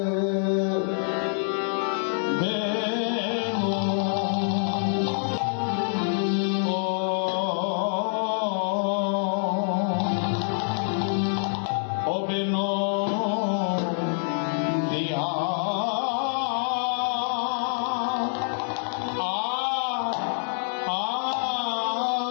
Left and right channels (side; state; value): right; silent; digital silence